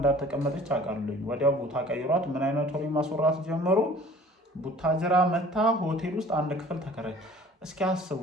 አውቃለሁኝ። ወዲያው ቦታ ቀይሯት ምን አይነት ወሬ ማስወራት ጀመሩ። ቡታጅራ መታ ሆቴል ውስጥ 1 ክፍል ተከራይ። እስኪ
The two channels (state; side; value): normal; both; correlation 0.49